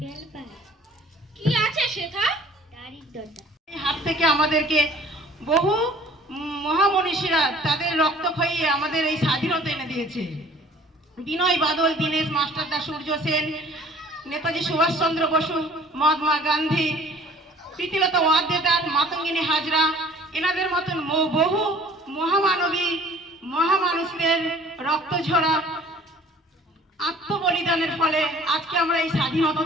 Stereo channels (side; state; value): both; normal; correlation 0.50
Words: বেলপাড়া কি আছে সেথা? দারিদ্রতা এই হাত থেকে আমাদেরকে বহু মহামনীষীরা তাদের রক্ত খাইয়ে আমাদের এই স্বাধীনতা এনে দিয়েছে। বিনয় বাদল, দীনেশ মাস্টারদা, সূর্য সেন, নেতাজি সুভাষচন্দ্র বসু, মহাত্মা গান্ধী, প্রীতিলতা ওয়াদ্দেদার, মাতঙ্গিনী হাজরা, এনাদের মতন বহু মহামানবী মহামানুষদের রক্ত ঝরা আত্মবলিদানের ফলে আজকে আমরা এই স্বাধীনতা